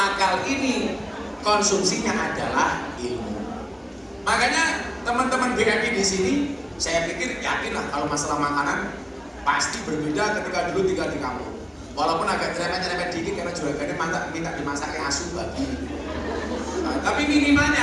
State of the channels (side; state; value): both; identical; correlation 1.00